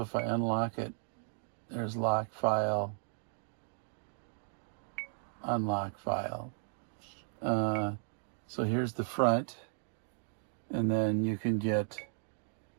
if I unlock it, there's lock file, unlock file. So here's the front, and then you can get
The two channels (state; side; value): silent; left; digital silence